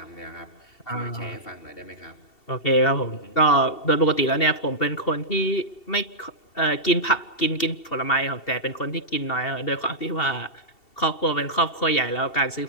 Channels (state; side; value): late; right; 2.7 ms